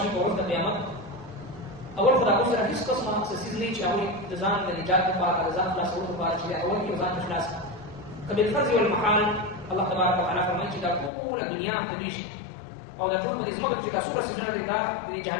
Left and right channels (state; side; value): drops out; right; at 11.1 s